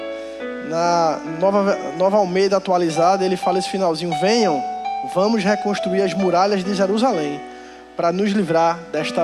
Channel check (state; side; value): identical; both; correlation 1.00